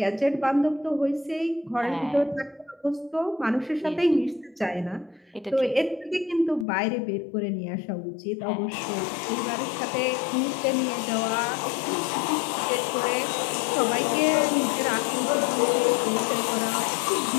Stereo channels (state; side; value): drops out; right; at 6.7 s